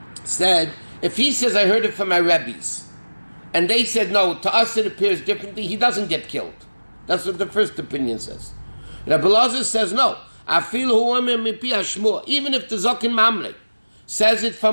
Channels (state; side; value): inverted; both; correlation -1.00